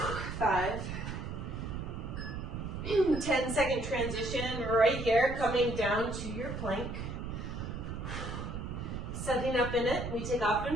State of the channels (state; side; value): noise; right; rumble, 5 dB below the sound